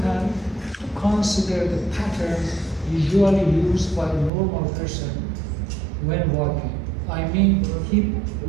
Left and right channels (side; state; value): left; drops out; at 4.3 s